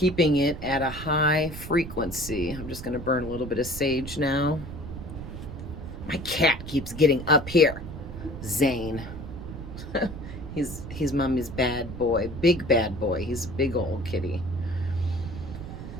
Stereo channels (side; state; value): right; noise; rumble, 10 dB below the sound